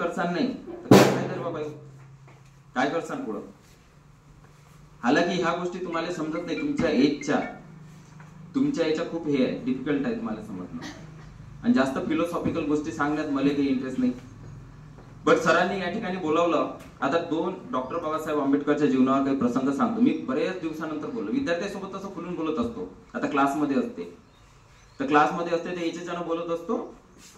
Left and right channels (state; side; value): identical; both; correlation 1.00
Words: नाही तर काय तर बाबा काय करसान पुढं. हालाकी ह्या गोष्टी तुम्हाला समजत नाही, तुमच्या याच्या खूप हे आहे, डिफिकल्ट आहे तुम्हाला समजणं. आणि जास्त फिलॉसॉफिकल गोष्टी सांगण्यात मला काही इंटरेस्ट नाही. बट सरांनी या ठिकाणी बोलावलं. आता 2 डॉक्टर बाबासाहेब आंबेडकरच्या जीवनावर काही प्रसंग सांगतो. मी बरेच दिवसानंतर बोललो, विद्यार्थ्यांसोबत असं खुलून बोलत असतो. आता क्लासमध्ये असते तर याच्यानं बोलत असतो